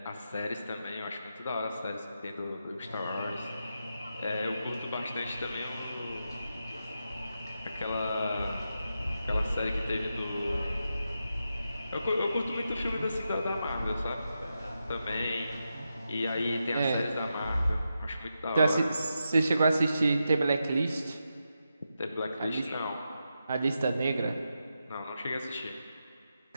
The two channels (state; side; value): inverted; both; correlation -0.87